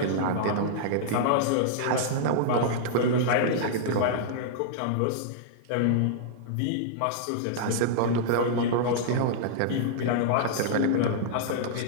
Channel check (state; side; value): different; both; correlation -0.02